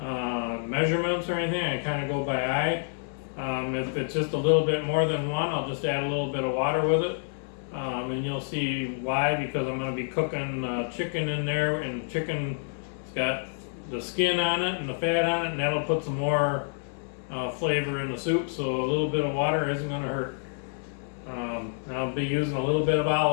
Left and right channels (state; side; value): silent; right; 59 dB below the other